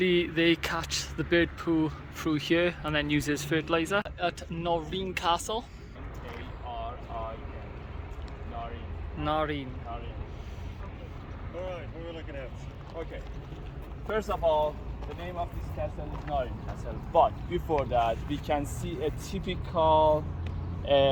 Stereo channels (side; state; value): both; identical; correlation 1.00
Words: they catch the bird poo through here and then use it as fertilizer. At Noreen Castle. Noreen. Alright, what are we looking at? Okay. First of all, the name of this castle is Noreen Castle, but before that we can see a typical